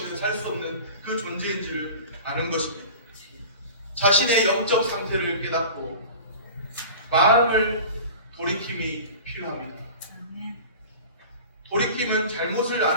살 수 없는 그 존재인지를 아는 것입니다. 자신의 영적 상태를 깨닫고 마음을 돌이킴이 필요합니다. 돌이킴은 잘못을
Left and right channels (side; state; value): both; inverted; correlation -0.38